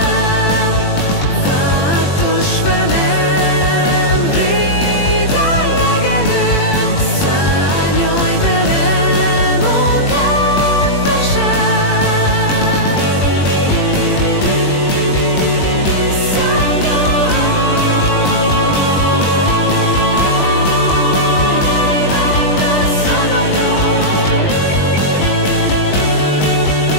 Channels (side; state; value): right; late; 21 ms